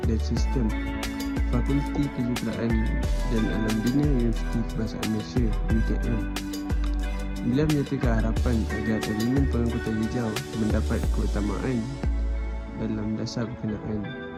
dan Sistem, Fakulti Kejuruteraan dan Alam Bina Universiti Kebangsaan Malaysia (UKM). Beliau menyatakan harapan agar elemen pengangkutan hijau mendapat keutamaan dalam dasar berkenaan.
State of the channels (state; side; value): identical; both; correlation 1.00